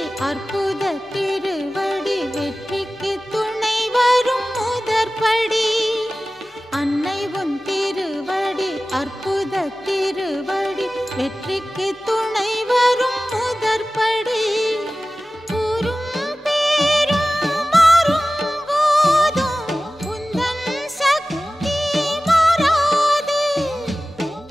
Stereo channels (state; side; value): normal; both; correlation 0.96